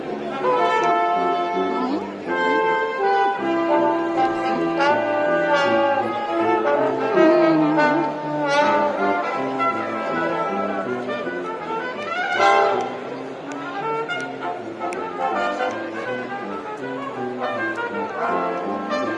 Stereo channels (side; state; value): both; identical; correlation 1.00